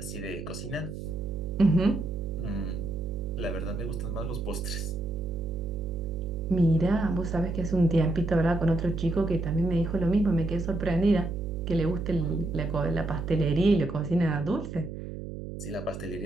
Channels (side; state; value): right; noise; hum, 8 dB below the sound